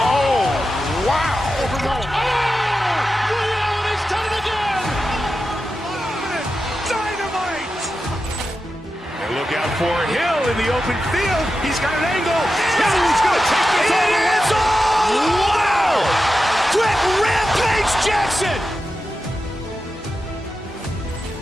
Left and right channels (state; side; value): normal; both; correlation 0.91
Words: wow. And he's done it again. Dynamite. And look out for Hill in the open field. He's got an angle. Hill's going to take this all the way. Wow! Quick Rampage Jackson.